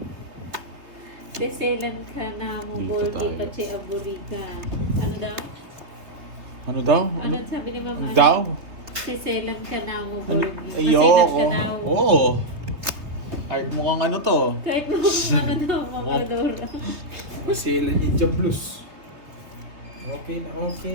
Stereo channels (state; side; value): late; left; 3.1 ms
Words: Seselan ka na mo, Dito Borgi, tayo. Pache, Aburika. Ano daw? Ano daw? Ano sabi ni Mama? Ano daw? Seselan ka na mo, Ano? Borgi. Maselan ka Ayoko. daw. Oo. Kahit mukhang ano to. Kahit mo ano daw, Mama Rodora. Masela Ninja Blues. Okay na,